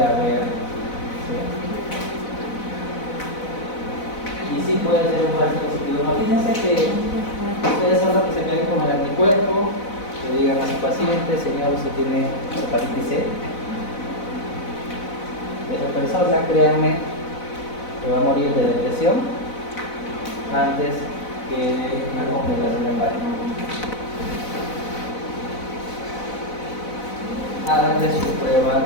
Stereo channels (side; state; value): right; late; 4.0 ms